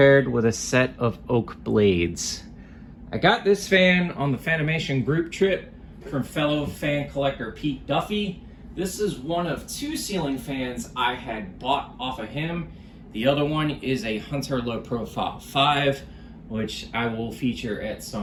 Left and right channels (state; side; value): identical; both; correlation 1.00